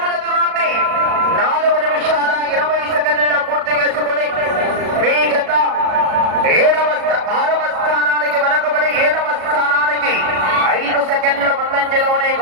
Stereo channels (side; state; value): left; late; 37 ms